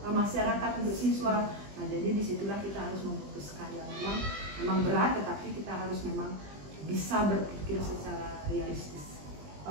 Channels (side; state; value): left; late; 20 ms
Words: masyarakat, untuk siswa. Nah, jadi disitulah kita harus memutuskan yang memang berat, tetapi kita harus memang bisa berpikir secara realistis.